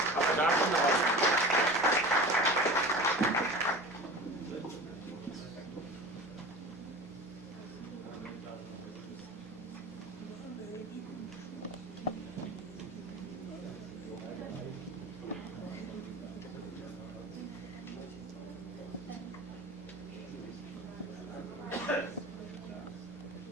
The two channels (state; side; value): normal; both; correlation 0.35